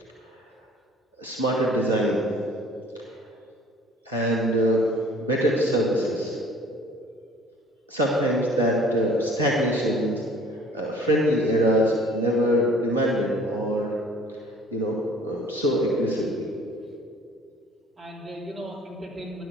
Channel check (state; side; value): normal; both; correlation 0.52